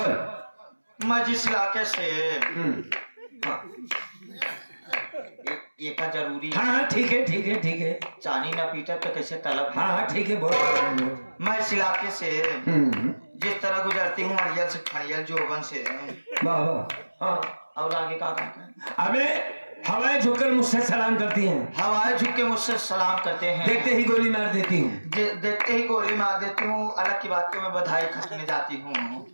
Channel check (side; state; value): both; inverted; correlation -1.00